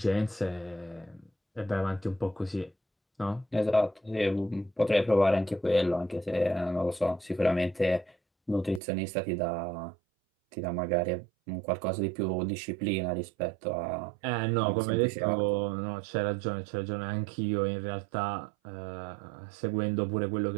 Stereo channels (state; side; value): drops out; left; at 8.8 s